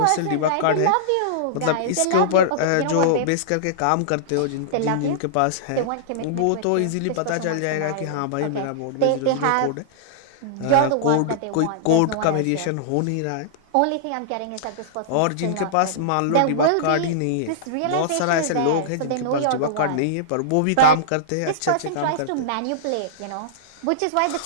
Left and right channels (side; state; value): both; different; correlation -0.02